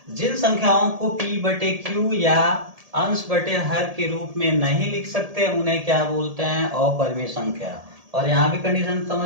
जिन संख्याओं को P/Q या अंश बटे हर के रूप में नहीं लिख सकते उन्हें क्या बोलते हैं, अपरिमेय संख्या। और यहाँ भी कंडीशन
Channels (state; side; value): late; left; 1.7 ms